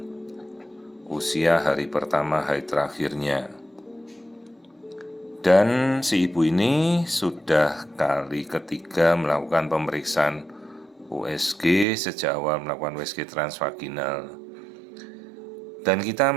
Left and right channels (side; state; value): left; drops out; at 11.9 s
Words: usia hari pertama hari terakhirnya. Dan si ibu ini sudah kali ketiga melakukan pemeriksaan USG sejak awal melakukan USG transvaginal. Dan kita